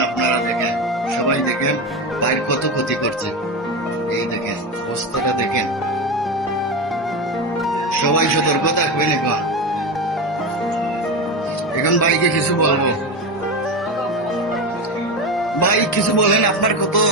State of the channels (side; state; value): both; normal; correlation 0.18